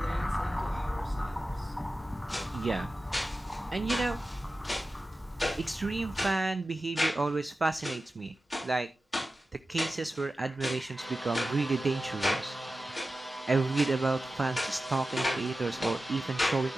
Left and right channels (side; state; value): both; normal; correlation 0.94